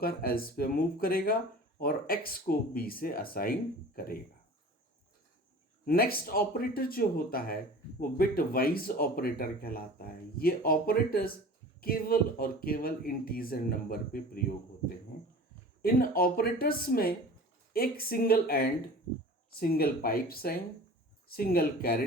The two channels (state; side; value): normal; both; correlation 0.40